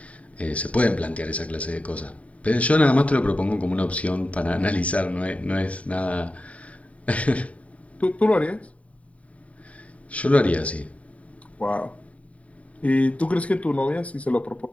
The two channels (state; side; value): late; right; 0.067 ms